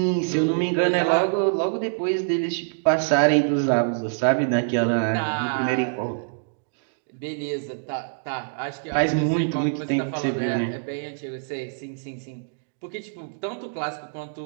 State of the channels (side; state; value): left; silent; digital silence